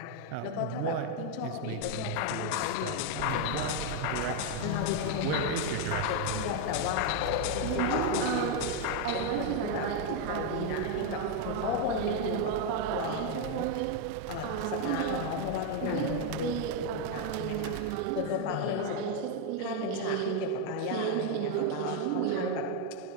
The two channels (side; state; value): both; different; correlation 0.01